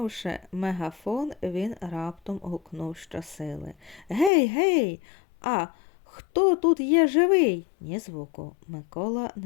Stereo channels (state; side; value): drops out; right; at 4.3 s